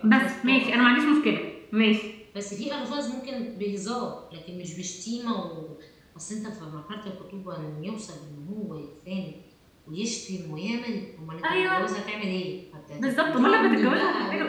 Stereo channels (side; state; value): both; identical; correlation 1.00